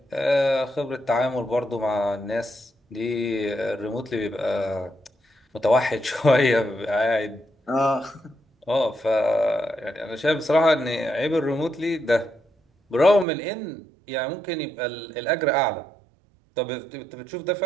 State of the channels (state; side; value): drops out; left; at 13.2 s